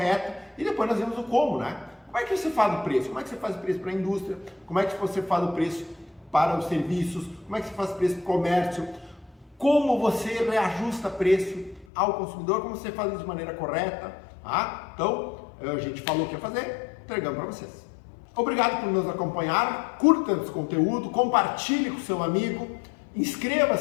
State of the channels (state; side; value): drops out; right; at 11.9 s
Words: e depois nós vimos o como, né? Como é que você faz o preço? Como é que você faz o preço para a indústria? Como é que você faz o preço para os serviços? Como é que você faz o preço para o comércio? Como você reajusta preço ao consumidor? Como você faz isso de maneira correta? Tá? Então, a gente falou o que ia fazer, entregamos para vocês. Obrigado por nos acompanhar, curta esse conteúdo, compartilhe com seu amigo,